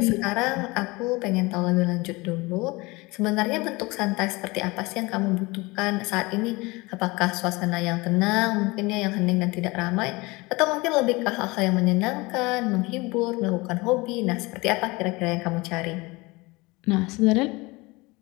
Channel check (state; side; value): quieter; right; 23.7 dB